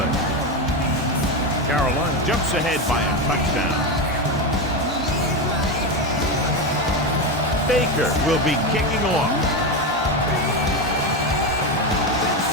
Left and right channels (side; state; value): both; normal; correlation 0.14